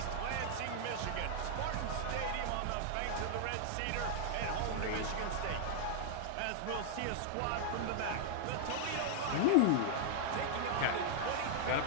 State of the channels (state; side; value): different; both; correlation -0.01